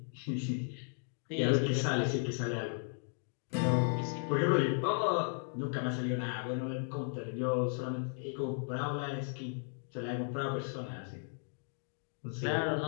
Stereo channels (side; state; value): right; silent; 54 dB below the other